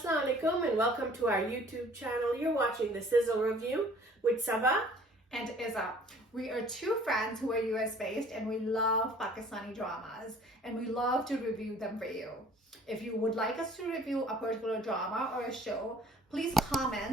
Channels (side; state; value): both; normal; correlation 0.53